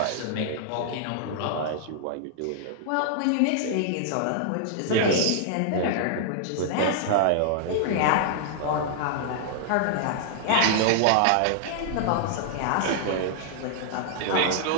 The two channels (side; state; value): both; different; correlation -0.01